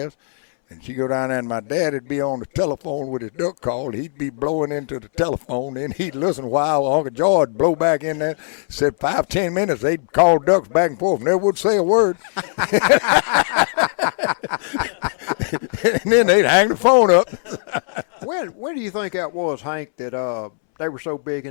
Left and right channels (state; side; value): silent; right; 66 dB below the other